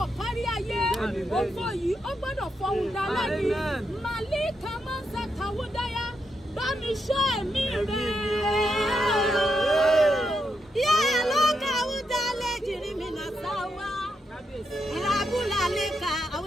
kárí ayé. Ògo yìí ó gbọ́dọ̀ fọhùn dálẹ́ ni. Màlí kàmá sàkàwúdáyà. Bá mi ṣọ́ ẹ̀mí rẹ̀. Yé ló kàwúdá lè jìrì mi nà sáwá. Ìràbùlà lè ka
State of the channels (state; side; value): normal; both; correlation 0.82